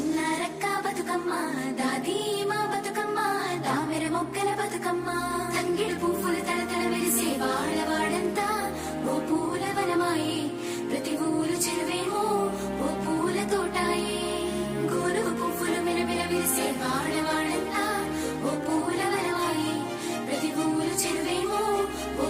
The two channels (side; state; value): both; identical; correlation 1.00